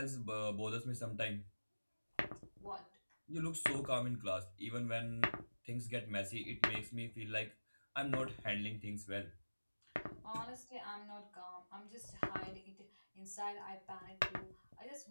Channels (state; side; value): inverted; both; correlation -1.00